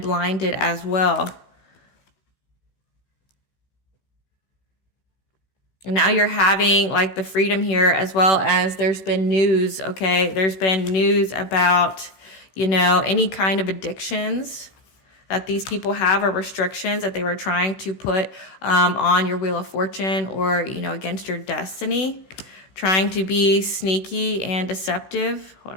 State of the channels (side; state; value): right; late; 16 ms